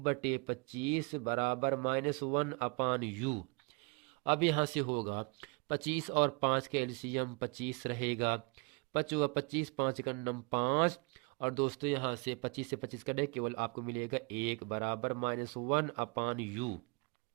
बराबर -1/u। अब यहाँ से होगा 25 और 5 के एलसीएम 25 रहेगा, 5 हुआ 25, 5 का नम 5। और दोस्तों यहाँ से 25 से 25 कटे केवल आपको मिलेगा 1 बराबर -1/u।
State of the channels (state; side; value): quieter; left; 31.1 dB